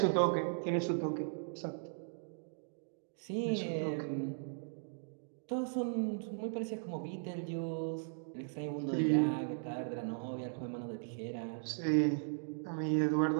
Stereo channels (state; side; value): silent; left; digital silence